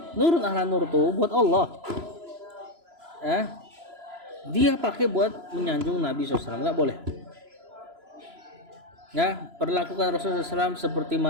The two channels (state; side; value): late; left; 3.0 ms